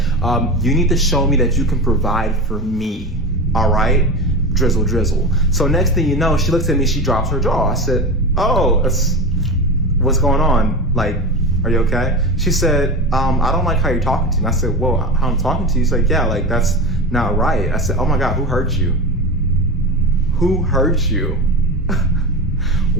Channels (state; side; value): normal; both; correlation 0.24